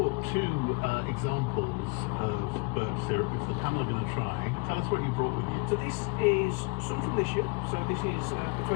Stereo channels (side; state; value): right; quieter; 30.6 dB